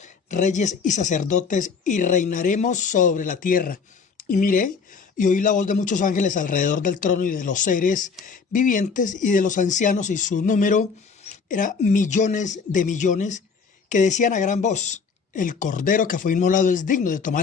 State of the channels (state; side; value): quieter; right; 5.4 dB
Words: reyes y sacerdotes, y reinaremos sobre la tierra. Y miré, y oí la voz de muchos ángeles alrededor del trono y de los seres vivientes y de los ancianos, y su número era millones de millones, que decían a gran voz: el cordero que fue inmolado es digno de tomar